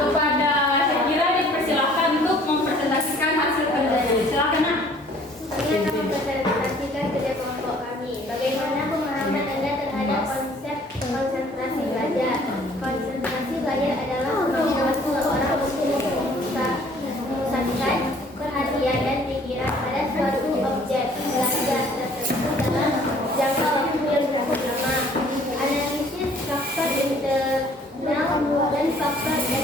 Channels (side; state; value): both; normal; correlation 0.56